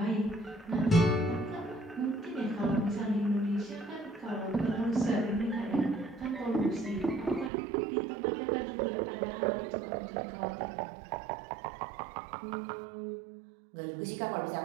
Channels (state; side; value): drops out; left; at 7.5 s